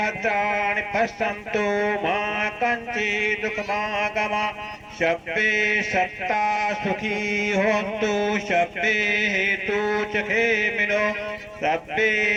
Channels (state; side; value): identical; both; correlation 1.00